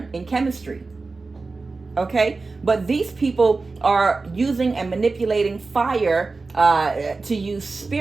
in chemistry, okay? But these people are using and manipulating fire to use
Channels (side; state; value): left; quieter; 3.9 dB